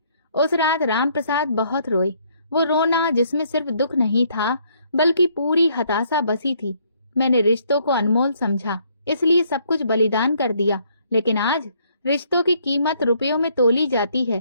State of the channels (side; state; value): both; inverted; correlation -0.67